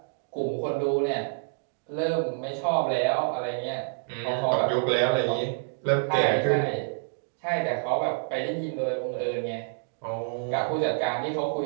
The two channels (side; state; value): left; silent; digital silence